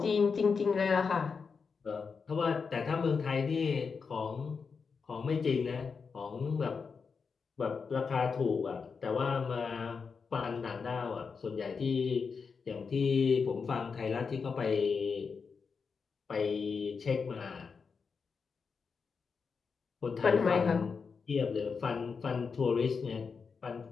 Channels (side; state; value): right; quieter; 5.4 dB